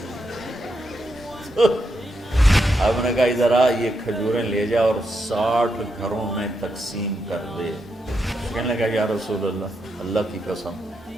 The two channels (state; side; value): normal; both; correlation 0.82